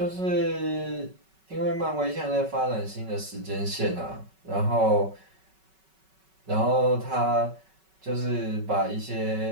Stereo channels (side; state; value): left; late; 5.3 ms